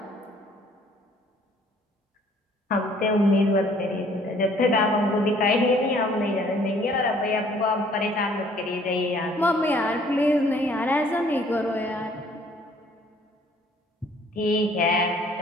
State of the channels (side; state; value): both; normal; correlation 0.59